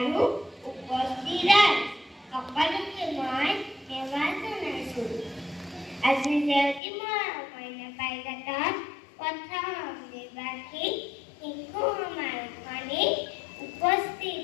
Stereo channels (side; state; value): right; drops out; at 6.8 s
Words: উপস্থিত ৰাইজ, সকলোকে মই সেৱা জনাইছোঁ। আজি জয়তী মইনা পাৰিজাতৰ প্ৰথম দ্বিবাৰ্ষিক শিশু সমাৰোহখনিত উপস্থিত